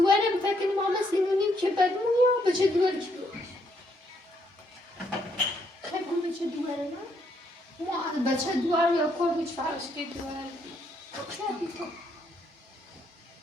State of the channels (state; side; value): normal; both; correlation 0.73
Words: فکر ماما سینونیم که بدمونی یا به چه دوار که بگوی خیلی بگوی به چه دوارم ما به چه دوار یا کار بیچ فرش که دوار خیلی تو